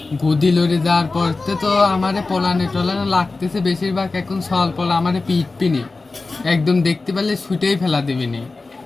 গদি লড়ে যাওয়ার পর তো আমারে পলানে টলানে লাগতেছে বেশিরভাগ, এখন সল পলা আমারে পিটপিনি একদম দেখতে পেলে ছুটেই ফেলা দেবেনি।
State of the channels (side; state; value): right; quieter; 3.6 dB